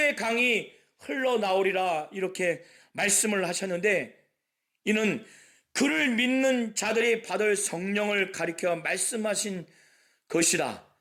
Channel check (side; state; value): both; identical; correlation 1.00